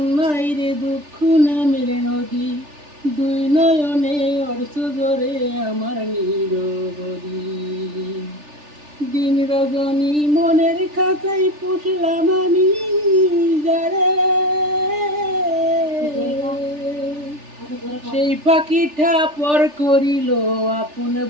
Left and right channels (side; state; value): left; late; 3.4 ms